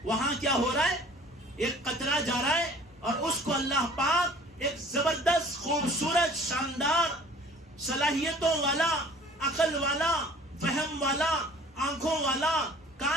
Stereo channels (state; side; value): normal; both; correlation 0.49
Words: وہاں کیا ہو رہا ہے. ایک قطرہ جا رہا ہے اور اس کو اللہ پاک ایک زبردست, خوبصورت, شاندار, صلاحیتوں والا, عقل والا, فہم والا, آنکھوں والا,